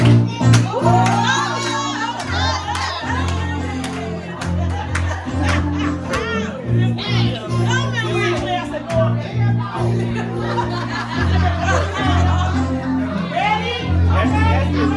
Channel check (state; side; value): identical; both; correlation 1.00